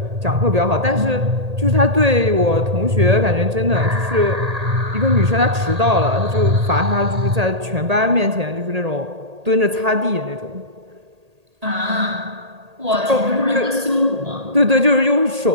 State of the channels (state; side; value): late; left; 1.8 ms